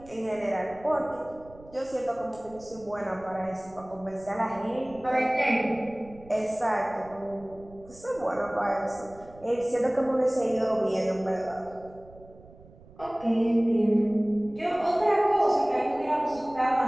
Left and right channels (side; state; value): right; noise; rumble, 22 dB below the sound